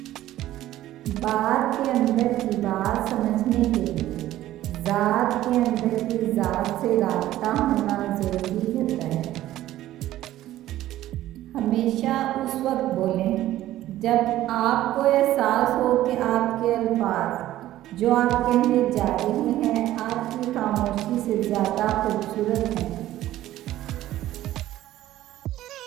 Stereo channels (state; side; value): quieter; left; 14.2 dB